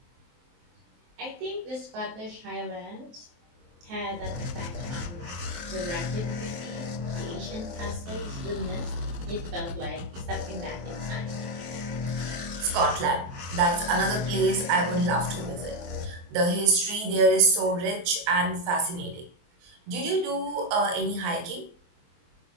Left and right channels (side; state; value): left; late; 23 ms